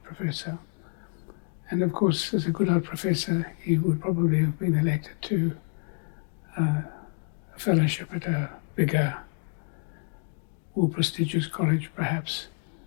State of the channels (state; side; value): silent; right; 59 dB below the other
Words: Professor. And of course, as a Goodhart Professor, he would probably have been elected to a fellowship at a bigger, more prestigious college, perhaps.